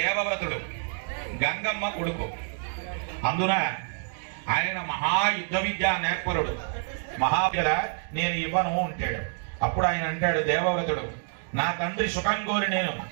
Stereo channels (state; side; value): silent; left; 59 dB below the other